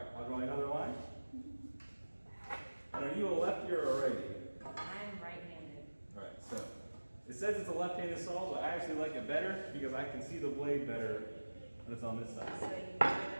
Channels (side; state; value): both; inverted; correlation -1.00